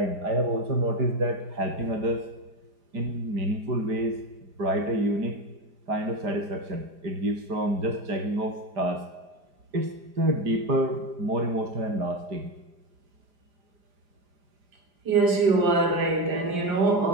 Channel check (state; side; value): late; left; 4.9 ms